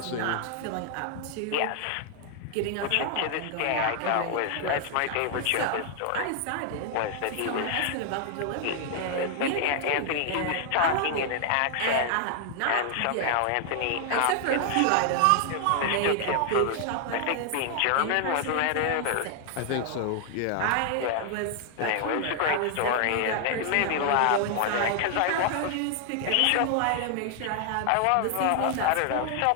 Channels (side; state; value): both; different; correlation 0.00